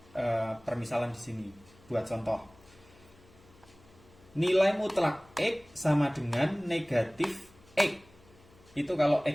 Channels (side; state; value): left; noise; hum, 27 dB below the sound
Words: permisalan di sini, buat contoh. Nilai mutlak X sama dengan negatif X. Itu kalau